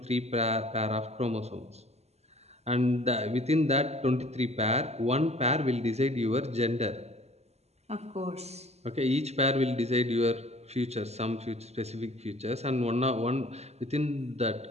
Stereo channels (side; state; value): left; late; 0.31 ms